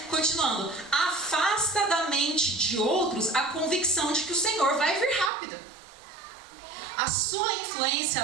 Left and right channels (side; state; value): left; drops out; at 5.3 s